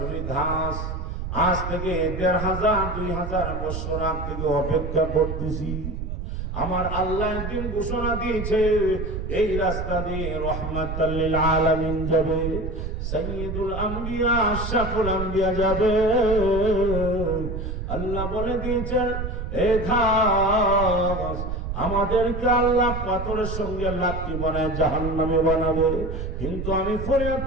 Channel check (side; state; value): right; noise; rumble, 5 dB below the sound